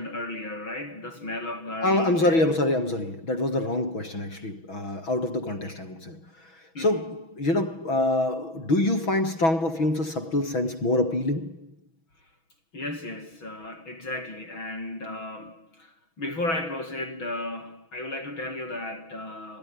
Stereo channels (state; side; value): late; right; 6.2 ms